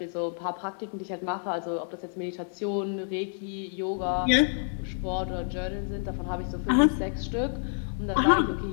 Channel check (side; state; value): right; silent; 59 dB below the other